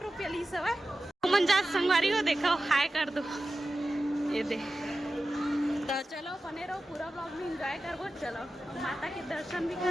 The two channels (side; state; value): both; normal; correlation 0.94